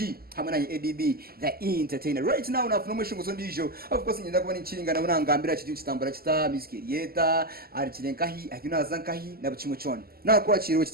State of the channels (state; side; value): late; left; 0.44 ms